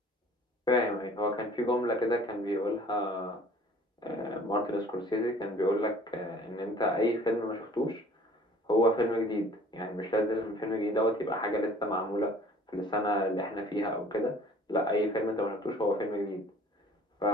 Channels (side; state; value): both; normal; correlation 0.51